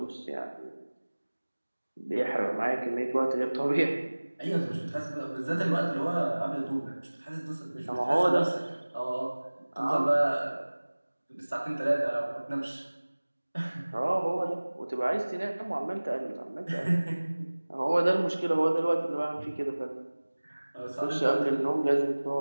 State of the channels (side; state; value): both; inverted; correlation -1.00